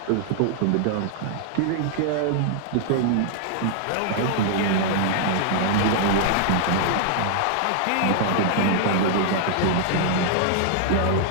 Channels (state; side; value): different; both; correlation -0.01